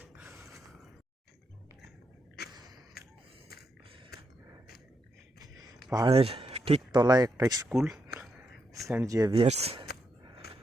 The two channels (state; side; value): normal; both; correlation 0.82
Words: পাহাড়ের ঠিক তলায় একটা স্কুল, সেন্ট জেভিয়ার্স।